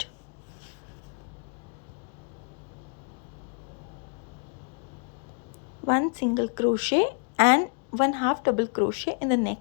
One single crochet and 1 half double crochet in the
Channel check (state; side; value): quieter; right; 38.8 dB